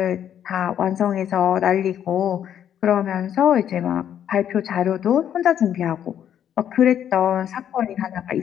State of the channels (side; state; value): right; quieter; 9.7 dB